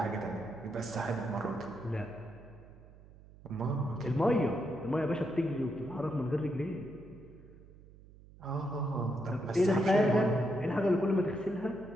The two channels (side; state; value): right; noise; hum, 21 dB below the sound